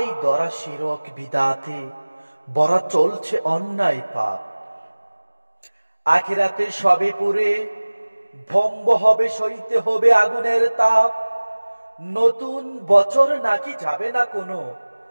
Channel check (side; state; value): both; inverted; correlation -1.00